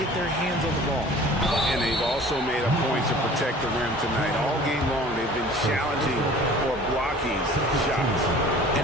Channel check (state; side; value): normal; both; correlation 0.46